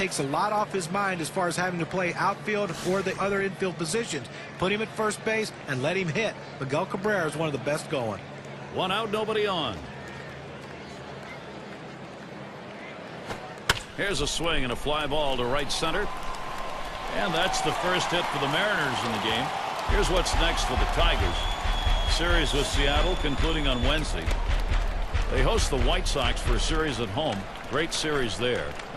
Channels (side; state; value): both; identical; correlation 1.00